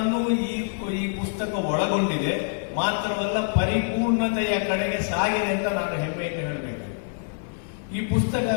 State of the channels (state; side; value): silent; right; 61 dB below the other